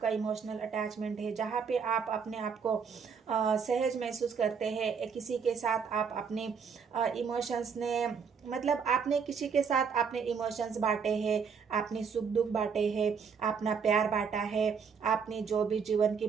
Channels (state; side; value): quieter; left; 6.2 dB